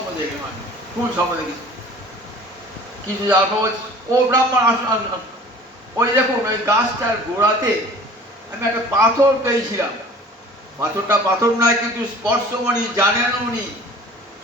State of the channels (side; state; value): both; normal; correlation 0.46